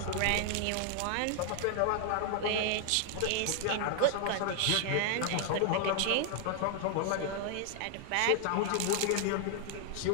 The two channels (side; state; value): both; different; correlation 0.00